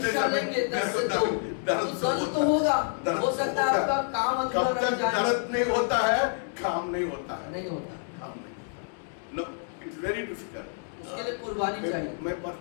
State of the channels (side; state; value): right; silent; 59 dB below the other